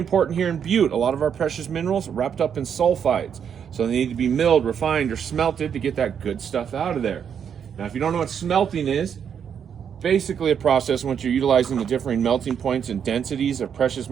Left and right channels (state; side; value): quieter; left; 7.8 dB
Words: here in Butte. A lot of our precious minerals are wrapped up in sulfides. So they need to be milled, refined, or smelted to get that good stuff out of there. Now, if you don't know what smelting is, basically a process in which you're utilizing the differing melting points and densities of precious